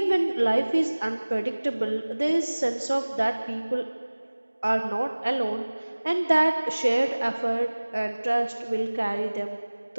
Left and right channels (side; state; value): both; inverted; correlation -1.00